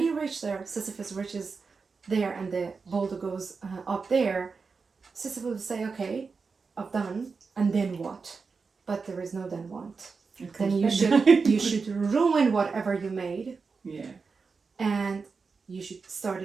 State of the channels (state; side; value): quieter; left; 4.8 dB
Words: reach there, Sisyphus reaches there and the boulder goes up there, Sisyphus will say, okay, I've done, and then what? But there is no then what. Then you should ruin whatever you made. And you should start